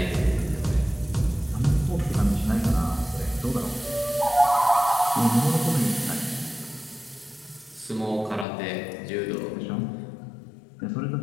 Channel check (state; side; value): drops out; right; at 8.5 s